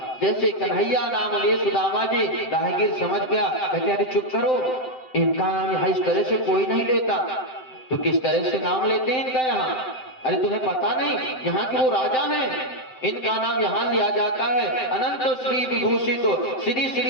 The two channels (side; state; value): right; late; 7.8 ms